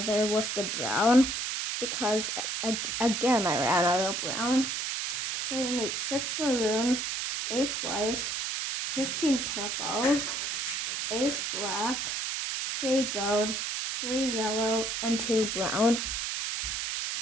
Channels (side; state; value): right; noise; hiss, 2 dB below the sound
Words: with the brown because again I ran out of brown. So you need 6 maroon, 8 white, 15 purple, 8 black, 3 gold, 3 yellow, and 2 brown.